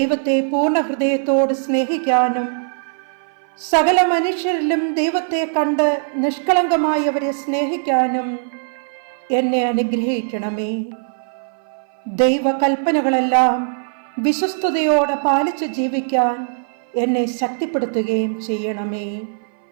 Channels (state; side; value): silent; left; 58 dB below the other